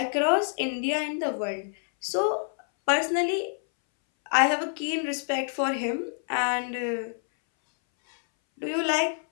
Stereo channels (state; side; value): silent; right; 60 dB below the other